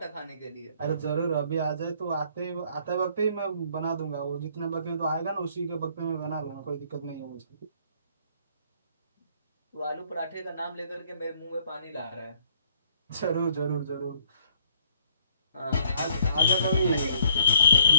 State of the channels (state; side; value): inverted; both; correlation -0.62